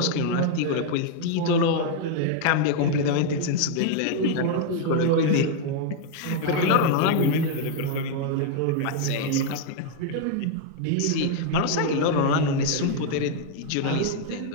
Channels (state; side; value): different; both; correlation 0.00